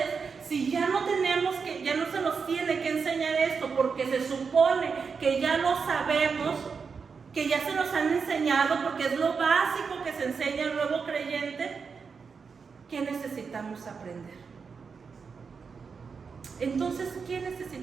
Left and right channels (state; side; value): quieter; left; 5.5 dB